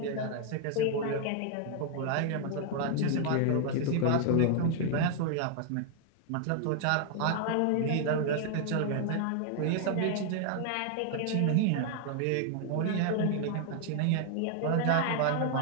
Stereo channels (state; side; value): different; both; correlation 0.00